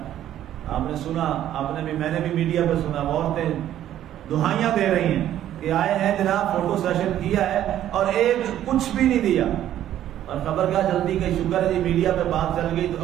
آپ نے سنا، آپ نے بھی، میں نے بھی میڈیا پہ سنا، عورتیں دہائیاں دے رہی ہیں کہ آئے ہیں جناب فوٹو سیشن کیا ہے اور ایک کچھ بھی نہیں دیا، اور خبر کیا جلدی کہ شکر ہے جی میڈیا پہ بات چل گئی تو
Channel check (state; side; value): quieter; left; 11.8 dB